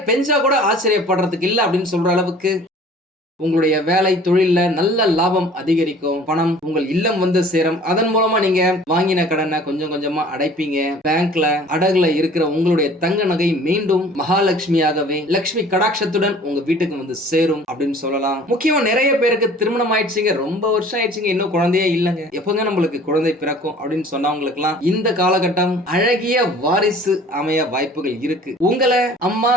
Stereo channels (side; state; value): both; normal; correlation 0.49